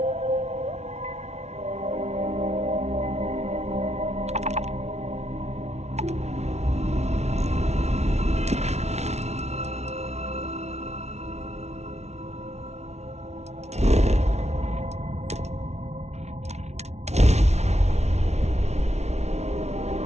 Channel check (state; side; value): late; left; 0.32 ms